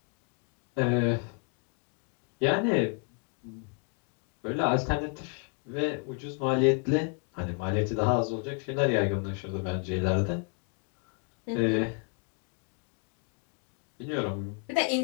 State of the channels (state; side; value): quieter; right; 36.9 dB